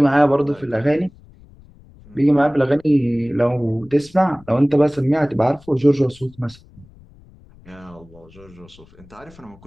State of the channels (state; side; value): noise; left; rumble, 25 dB below the sound